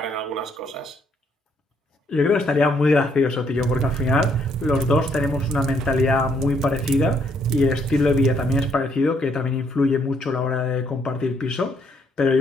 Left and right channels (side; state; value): both; normal; correlation 0.70